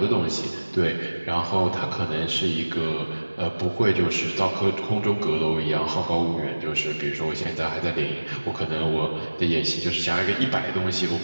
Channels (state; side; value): inverted; both; correlation -1.00